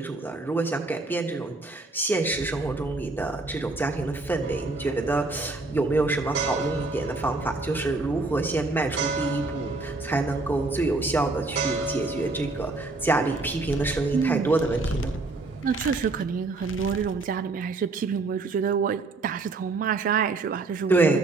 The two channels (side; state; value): left; quieter; 3.3 dB